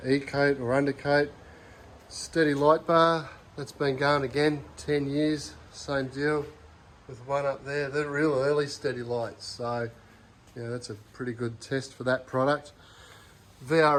or undercoat. Steady light bar, that's been going again 10 years, same deal with one up there. They're real early steady lights, so that's a pretty good test for that product.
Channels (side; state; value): both; identical; correlation 1.00